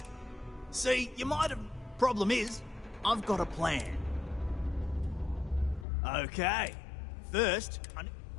See, you might have... Problem is, I've got a plan. Okay. First,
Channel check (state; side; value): drops out; right; at 5.9 s